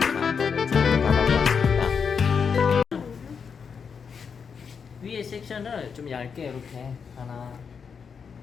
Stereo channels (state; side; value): quieter; right; 6.2 dB